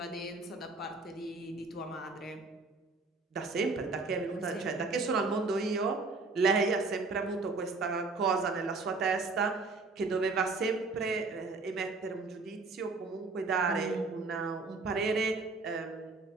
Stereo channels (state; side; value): quieter; left; 3.8 dB